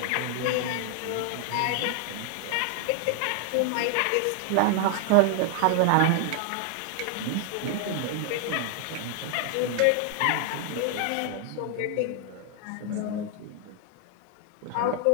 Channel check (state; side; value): different; both; correlation 0.00